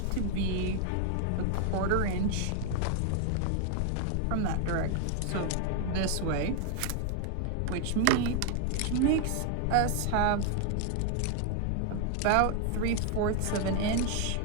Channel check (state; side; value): different; both; correlation 0.00